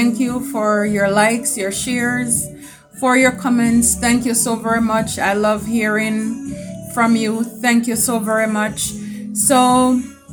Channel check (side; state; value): both; identical; correlation 1.00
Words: you for your likes, your shares, for your comments. Thank you so very much. I love hearing from you. Thank you so very much. So,